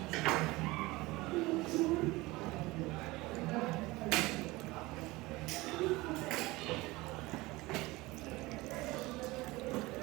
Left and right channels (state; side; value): quieter; left; 21.0 dB